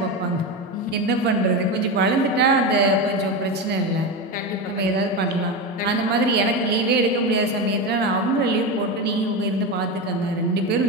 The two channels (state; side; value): normal; both; correlation 0.18